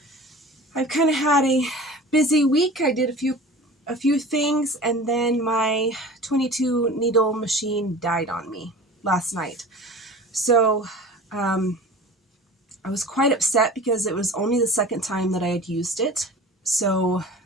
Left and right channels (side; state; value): both; normal; correlation 0.39